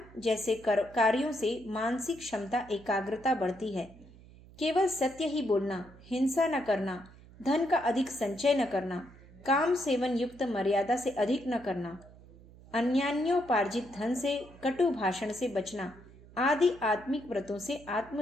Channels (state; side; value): noise; right; hum, 22 dB below the sound